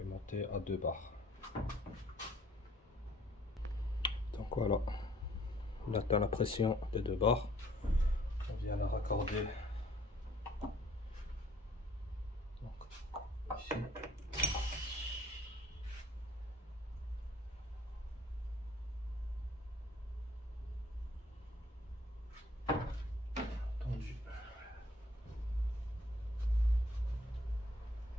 monter à 2 bars. Donc voilà, on atteint la pression des 2 bars. On vient la raccorder donc, ici. Tendu.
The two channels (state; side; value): normal; both; correlation 0.59